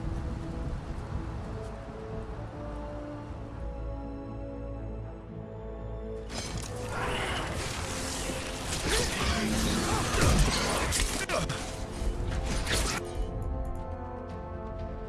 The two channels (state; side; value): identical; both; correlation 1.00